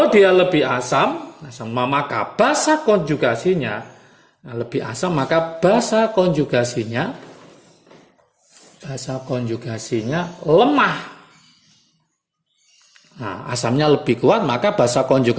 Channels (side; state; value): both; identical; correlation 1.00